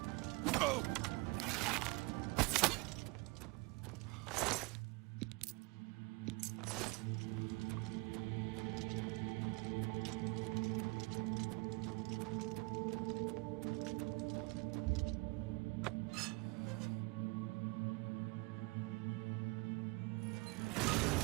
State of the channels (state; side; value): quieter; left; 26.2 dB